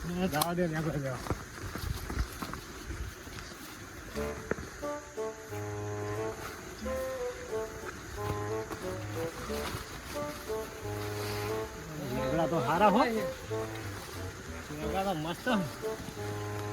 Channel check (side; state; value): both; identical; correlation 1.00